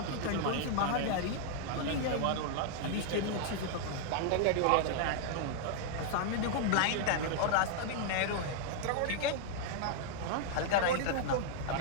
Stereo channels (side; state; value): both; different; correlation -0.01